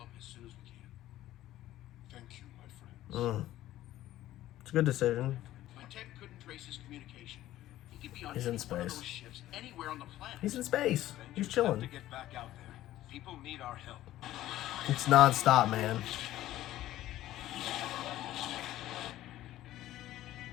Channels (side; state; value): right; quieter; 14.4 dB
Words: as soon as we can. Thank you, my friends. It's a good decision. My tech couldn't trace his communication. He could be on He's any in one of space. those ships anywhere on the planet. He's in space. He's Avengers have chilling. to get back out there. People need our help. It's non-stop, man.